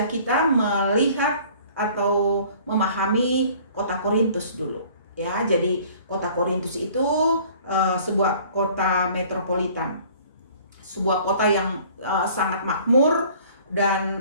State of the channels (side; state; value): both; inverted; correlation -0.52